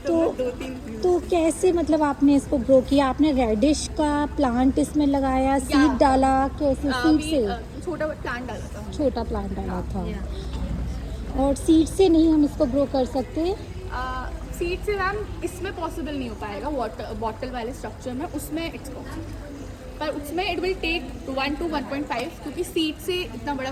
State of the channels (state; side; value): identical; both; correlation 1.00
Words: तो 2-3. तो कैसे, मतलब आपने इसको ग्रो किया? आपने रेडिश का प्लांट इसमें लगाया, सीड डाला, कैसे? सीड से छोटा प्लांट डाला था. छोटा प्लांट डाला था. और सीड से नहीं हम इसको ग्रो कर सकते? सीड से मैम इसमें पॉसिबल नहीं हो पाएगा, वाटर बॉटल वाले स्ट्रक्चर में, उसमें इट्स पॉसिबल, पर उसमें इट विल टेक 1 to 1.5, क्योंकि सीड से इतना बड़ा